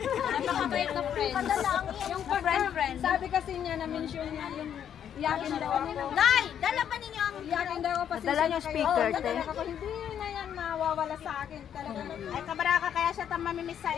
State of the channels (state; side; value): quieter; right; 9.2 dB